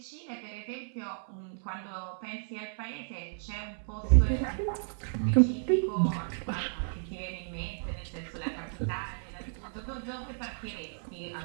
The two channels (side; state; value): left; silent; 56 dB below the other